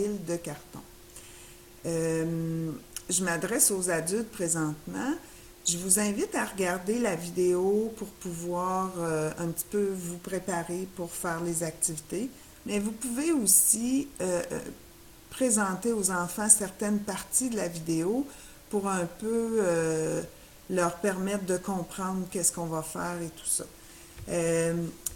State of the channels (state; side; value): identical; both; correlation 1.00